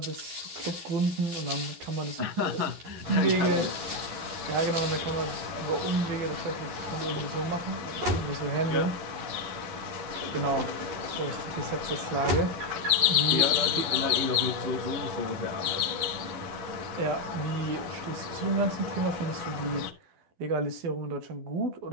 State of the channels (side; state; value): left; late; 11 ms